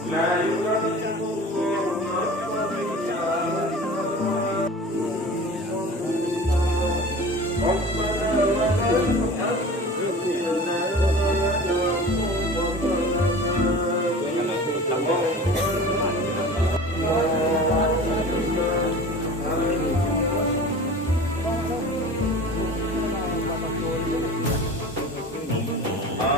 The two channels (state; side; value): normal; both; correlation 0.38